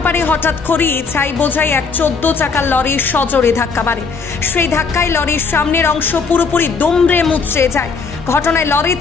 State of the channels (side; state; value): right; quieter; 5.0 dB